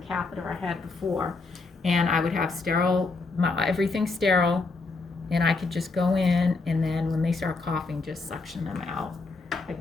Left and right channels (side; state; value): right; quieter; 3.8 dB